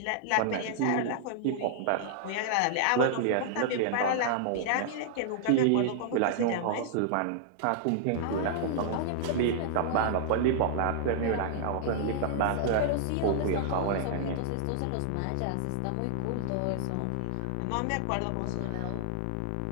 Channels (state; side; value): different; both; correlation -0.01